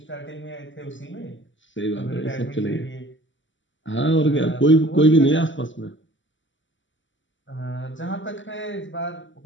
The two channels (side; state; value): right; late; 0.55 ms